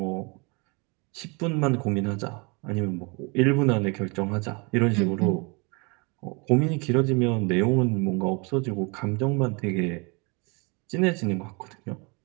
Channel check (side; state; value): left; quieter; 30.1 dB